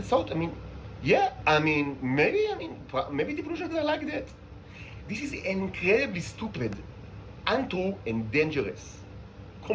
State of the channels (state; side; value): identical; both; correlation 1.00